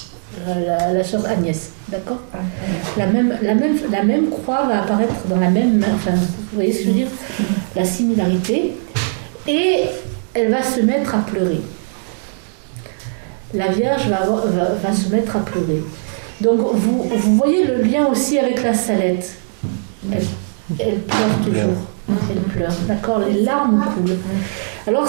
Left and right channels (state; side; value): silent; left; digital silence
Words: la sœur Agnès, d'accord? La même croix va apparaître dans la même main, enfin, vous voyez ce que je veux dire? La similarité. Et elle va se mettre à pleurer. La Vierge va se mettre à pleurer. Donc, vous voyez le lien aussi avec la Salette. Elle pleure toujours. Elle pleure, d'accord? Les larmes coulent. Alors,